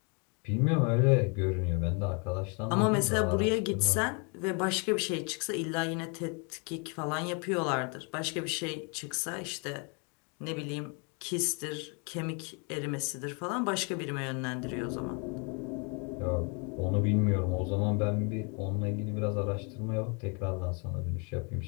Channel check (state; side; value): quieter; right; 35.1 dB